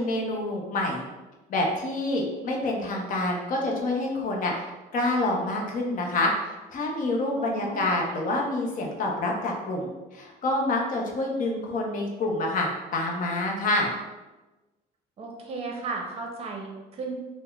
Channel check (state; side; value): normal; both; correlation 0.27